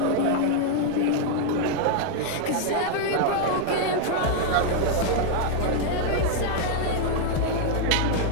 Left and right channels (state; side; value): different; both; correlation -0.01